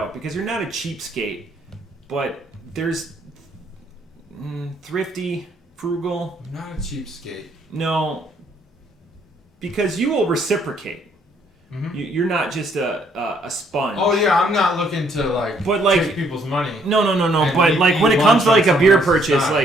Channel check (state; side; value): normal; both; correlation 0.67